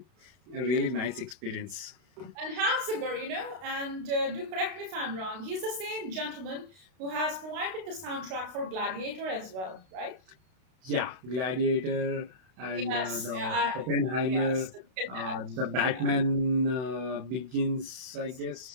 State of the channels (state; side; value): late; left; 32 ms